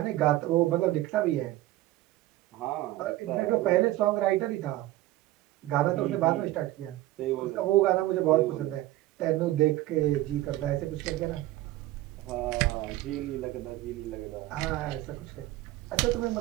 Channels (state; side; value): quieter; left; 16.3 dB